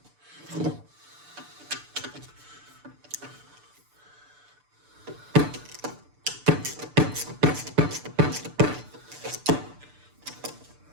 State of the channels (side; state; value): left; late; 6.8 ms